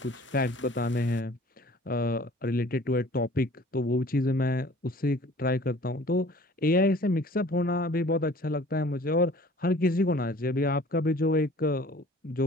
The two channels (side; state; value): both; normal; correlation 0.50